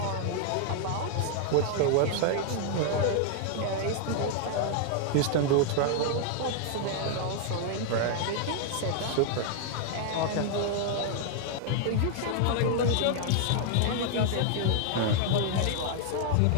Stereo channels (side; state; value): both; different; correlation 0.00